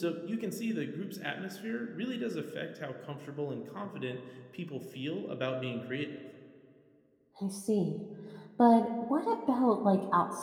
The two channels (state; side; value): identical; both; correlation 1.00